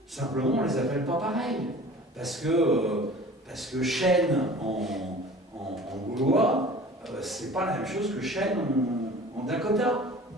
Simplement, on ne les appelle pas pareil. Parce que chêne en gaulois, c'est pas la même chose que chêne en Dakota.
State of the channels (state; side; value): normal; both; correlation 0.43